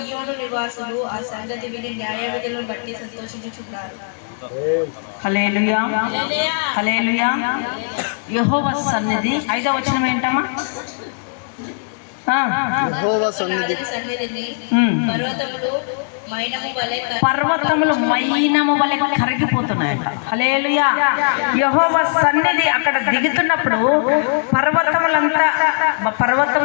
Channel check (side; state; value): right; silent; digital silence